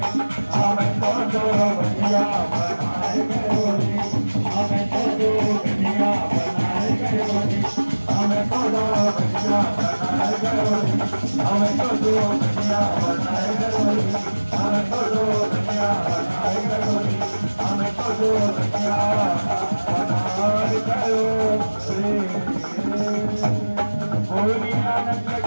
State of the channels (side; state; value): both; inverted; correlation -1.00